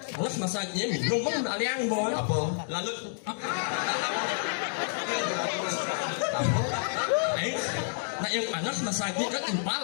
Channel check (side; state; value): right; silent; digital silence